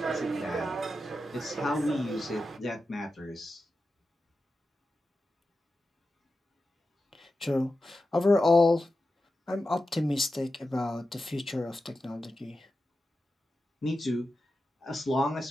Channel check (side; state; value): both; normal; correlation 0.91